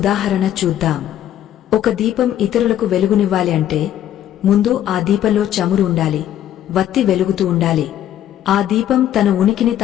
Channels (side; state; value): right; quieter; 11.5 dB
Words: చూద్దాం. ఒక దీపం ఇతరులకు వెలుగునివ్వాలి అంటే ముందు ఆ దీపంలో చమురు ఉండాలి, వత్తి వెలుగుతూ ఉండాలి. ఆ దీపం తన ఉనికిని